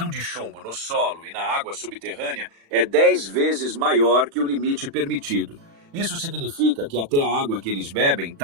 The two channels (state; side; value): late; left; 36 ms